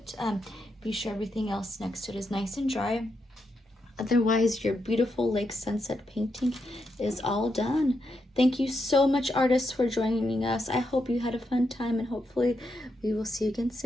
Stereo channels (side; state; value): both; normal; correlation 0.83